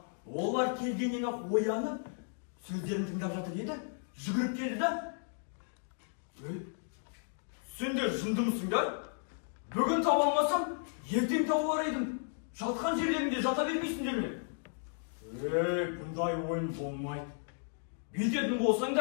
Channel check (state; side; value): silent; right; digital silence